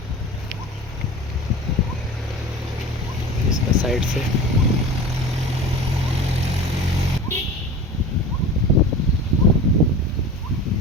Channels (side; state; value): both; normal; correlation 0.36